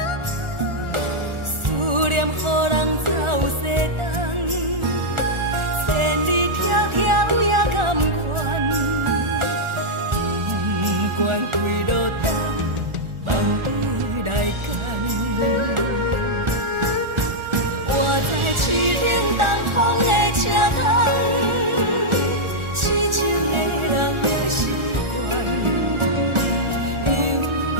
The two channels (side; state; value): left; late; 1.4 ms